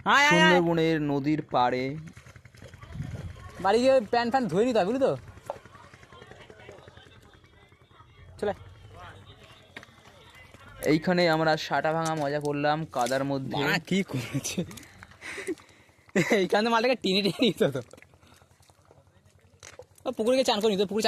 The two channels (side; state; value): both; identical; correlation 1.00